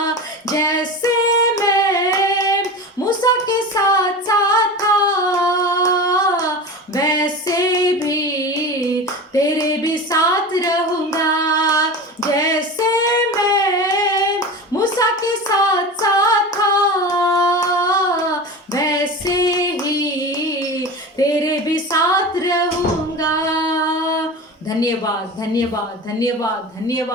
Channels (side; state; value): both; normal; correlation 0.29